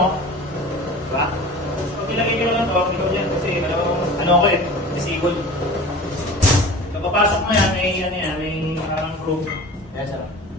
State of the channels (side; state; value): both; normal; correlation 0.38